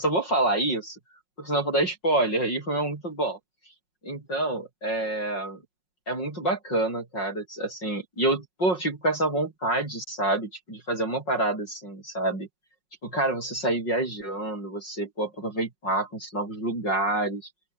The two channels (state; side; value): late; right; 5.5 ms